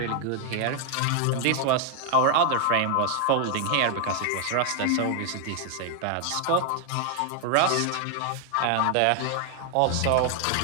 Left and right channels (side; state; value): both; different; correlation 0.00